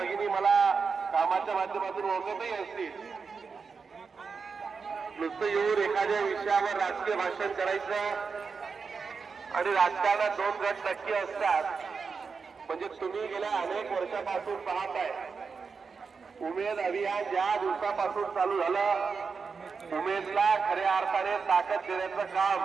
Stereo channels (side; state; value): left; quieter; 5.2 dB